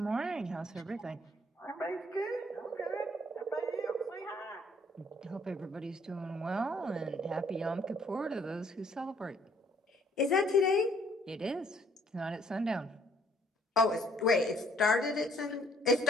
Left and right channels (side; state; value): both; normal; correlation 0.63